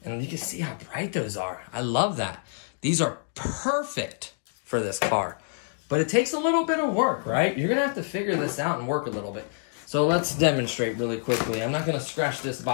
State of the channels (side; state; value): right; silent; digital silence